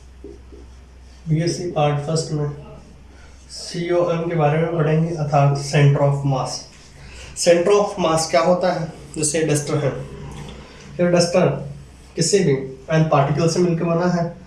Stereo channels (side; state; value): both; identical; correlation 1.00